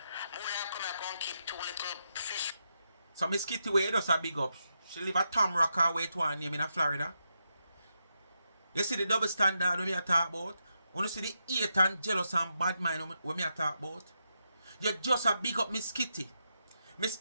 More than come here and keep 2 little fish. So Miss Kitty way does a big up. She live at Tom Rocker way to her name in Florida. You see the double standard when me a talk about? When you see the hate and jealous and bad mind when me a talk about? You just a big up Miss Kitty. Miss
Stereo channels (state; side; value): inverted; both; correlation -0.84